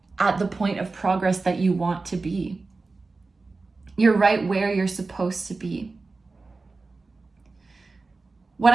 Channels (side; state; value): left; quieter; 3.8 dB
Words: at the point of progress that you want to be. You're right where you're supposed to be. What